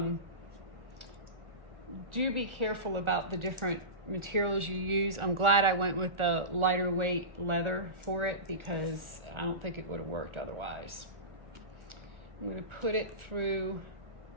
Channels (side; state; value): left; late; 1.4 ms